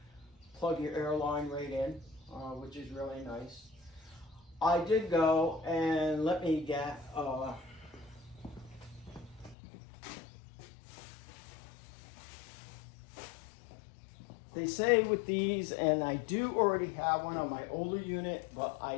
plug your air line right in, which is really nice. I did go and let me get they say with these, and I do already have one on my older unit, but I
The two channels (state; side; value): drops out; right; at 9.6 s